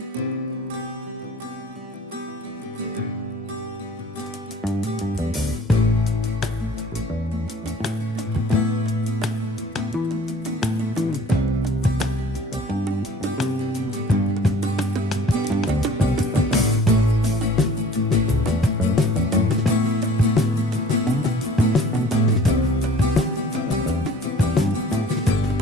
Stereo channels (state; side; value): normal; both; correlation 0.50